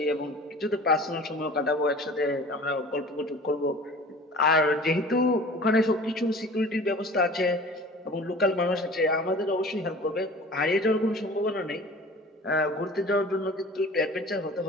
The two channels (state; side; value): normal; both; correlation 0.43